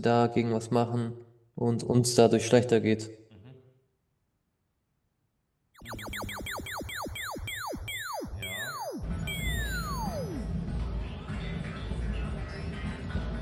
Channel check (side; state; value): both; identical; correlation 1.00